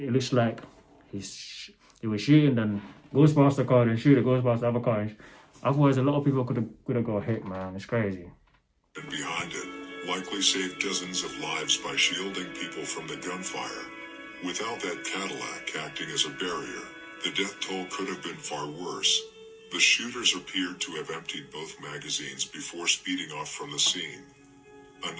looks like he was shooting, then goes past the car, then shoot it, goes past the other car. And otherwise, a lot of people could have got hit, man. It's crazy. And behind it, likely saved dozens of lives by shielding people from the gunfire. Without that Cadillac acting as a barrier, the death toll could have been far worse. The shooters appeared to have emptied both magazines before speeding off from the scene.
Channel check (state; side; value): identical; both; correlation 1.00